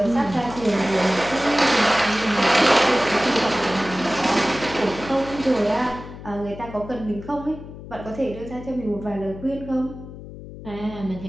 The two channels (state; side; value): noise; left; hum, 14 dB below the sound